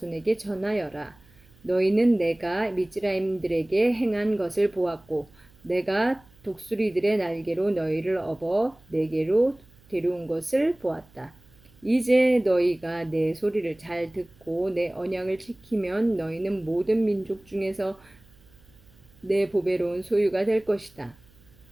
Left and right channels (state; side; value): noise; right; hum, 28 dB below the sound